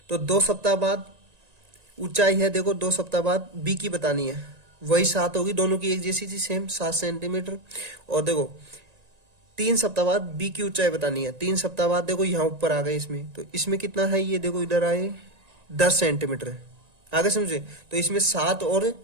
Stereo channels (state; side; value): late; left; 1.9 ms